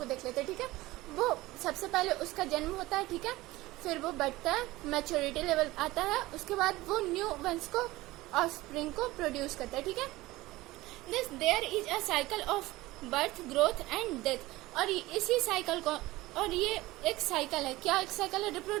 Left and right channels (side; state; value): left; quieter; 18.7 dB